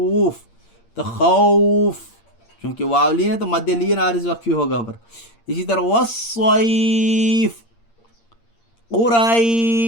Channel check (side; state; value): right; late; 8.7 ms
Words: تو خوف چونکہ واو لین ہے تو مد لین عارض وقفی ہوگا پر. اسی طرح والصیف،